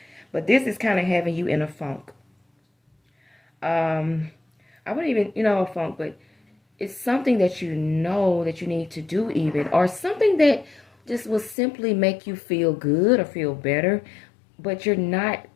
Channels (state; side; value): drops out; right; at 11.6 s